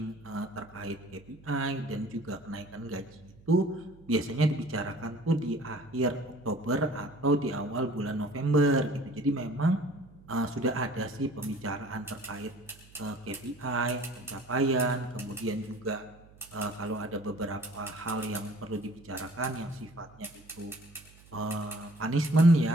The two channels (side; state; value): right; noise; hum, 24 dB below the sound